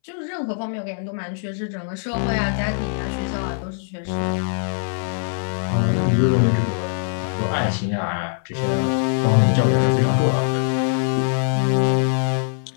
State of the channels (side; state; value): right; silent; 64 dB below the other